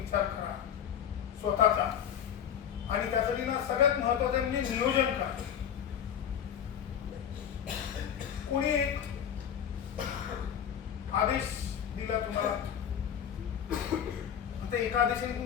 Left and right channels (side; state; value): right; quieter; 8.9 dB